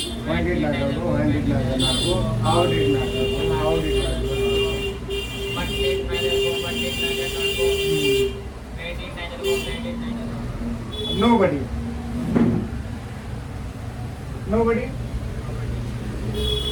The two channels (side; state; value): both; identical; correlation 1.00